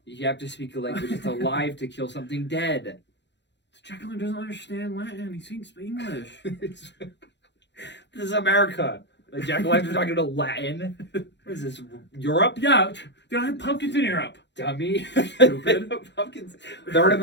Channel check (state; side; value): late; right; 0.52 ms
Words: You have to speak a language that's alive to kill something dead. Jacqueline doesn't understand Latin. He speaks English. This is America. Like Jack O'Lanterns talking to Latin. What is this? Europe? Yeah, they don't have pumpkins in Europe. Dummy. Stupid. Pumpkins. They're an